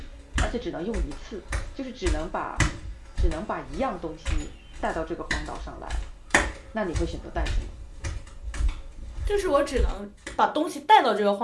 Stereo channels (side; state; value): both; identical; correlation 1.00